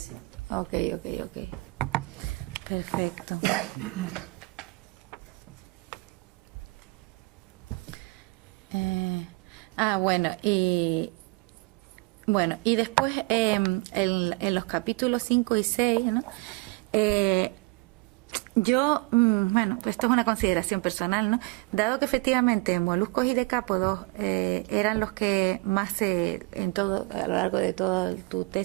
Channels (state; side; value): quieter; left; 25.3 dB